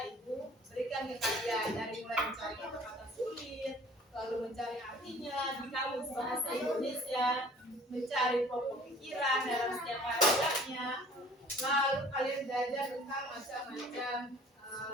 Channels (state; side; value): normal; both; correlation 0.50